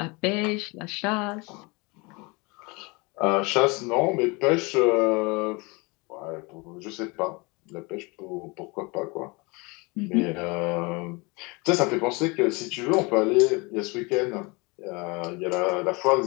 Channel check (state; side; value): quieter; right; 27.3 dB